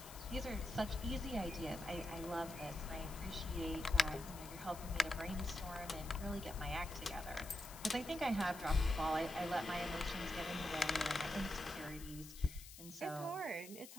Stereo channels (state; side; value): noise; left; hiss, 15 dB below the sound